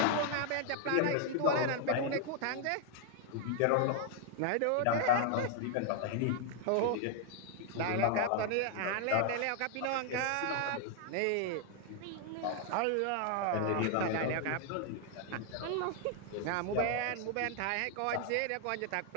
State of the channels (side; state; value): both; different; correlation 0.00